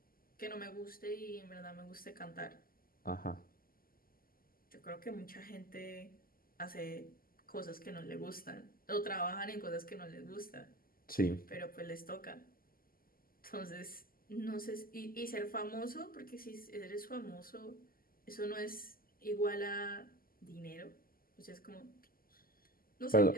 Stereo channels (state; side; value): late; right; 0.42 ms